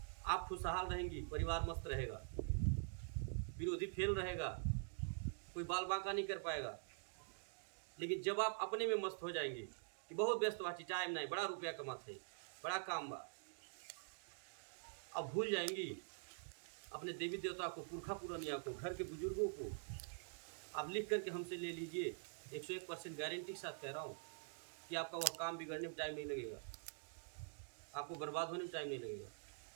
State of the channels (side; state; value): left; silent; digital silence